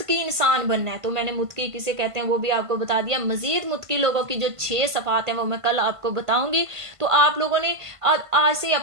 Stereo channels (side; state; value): left; late; 1.5 ms